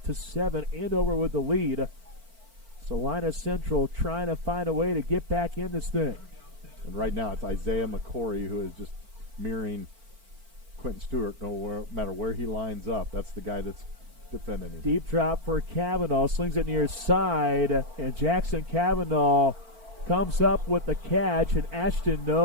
Andover with the lead. Salina Central trying to find a way to get back in this thing. And right now it's Isaiah McCory who is just mirroring Quentin Stewart. No matter where he lines up, that's the guy that's defending him. Deep drop for Kavanaugh, slings it near side, and Jackson Kavanaugh comes up with the catch, and Ashton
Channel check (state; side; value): late; left; 4.4 ms